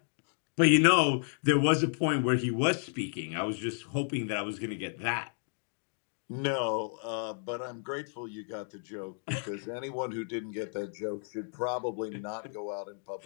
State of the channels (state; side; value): silent; right; 56 dB below the other